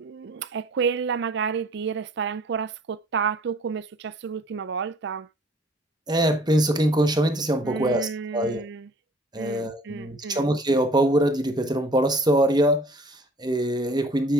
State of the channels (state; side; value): normal; both; correlation 0.53